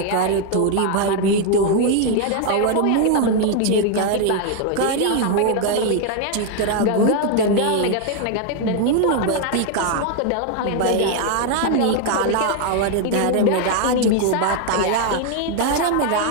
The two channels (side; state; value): both; different; correlation 0.00